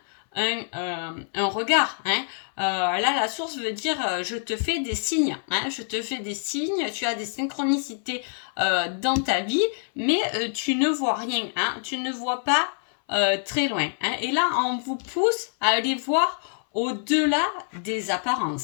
un regard. Hein. Là, la source veut dire je te fais des signes. Hein, je te fais des signes, tu as des synchronicités dans ta vie, mais tu ne vois rien. Hein, tu ne vois pas très loin. Hein, et là, on vous pousse à aller voir au-delà des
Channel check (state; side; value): silent; right; 61 dB below the other